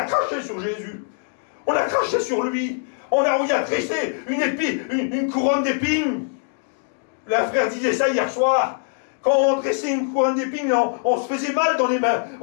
craché sur Jésus. On a craché sur lui. On y a tressé une couronne d'épines. Le frère disait ça hier soir. Quand on tressait une couronne d'épines, on se faisait mal dans les mains.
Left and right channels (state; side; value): silent; right; 64 dB below the other